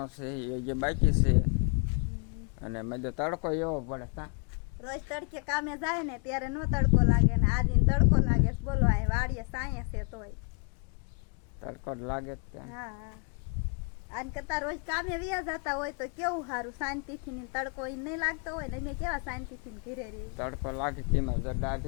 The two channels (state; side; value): quieter; right; 38.7 dB